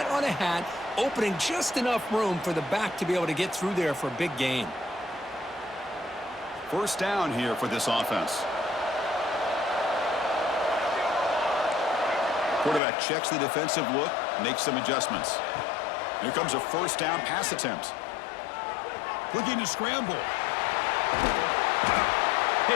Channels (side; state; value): right; drops out; at 12.8 s